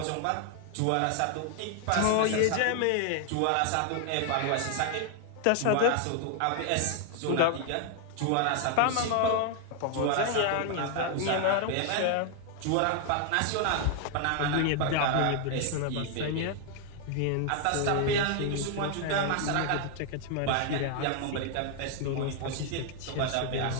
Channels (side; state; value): both; different; correlation 0.00